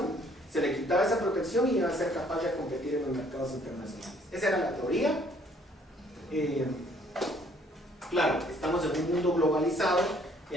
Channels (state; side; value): normal; both; correlation 0.62